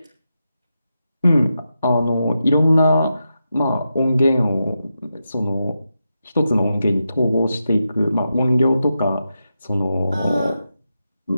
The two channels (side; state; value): both; inverted; correlation -0.88